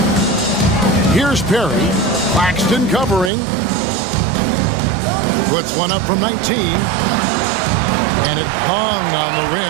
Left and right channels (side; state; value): left; drops out; at 3.3 s